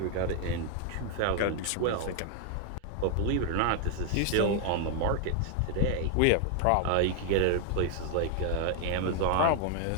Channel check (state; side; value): different; both; correlation 0.00